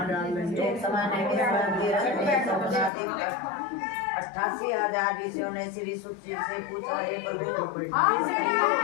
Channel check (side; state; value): right; drops out; at 2.9 s